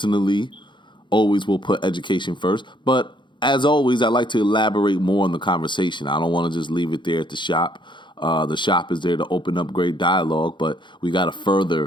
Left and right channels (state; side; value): late; right; 0.23 ms